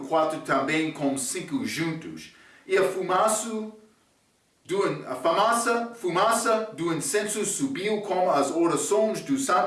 4 também com 5 juntos. E a fumaça do incenso subiu como as orações dos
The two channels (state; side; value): identical; both; correlation 1.00